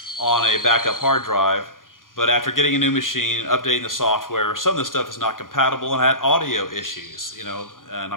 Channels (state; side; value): late; right; 0.90 ms